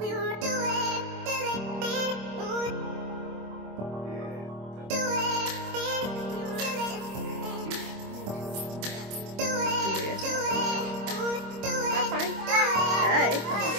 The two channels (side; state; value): left; late; 26 ms